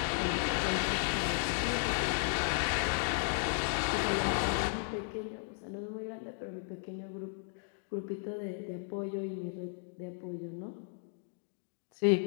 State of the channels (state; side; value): silent; right; digital silence